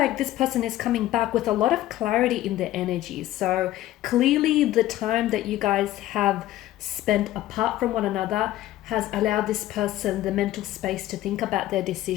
this person is coming back with a lot of clarity in their energies. So clearly the time that you guys have spent apart from one another has allowed this person the mental space to think about their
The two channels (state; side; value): quieter; right; 14.6 dB